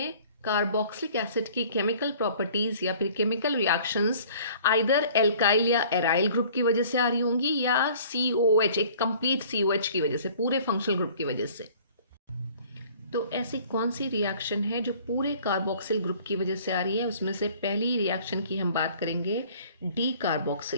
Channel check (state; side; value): inverted; both; correlation -0.52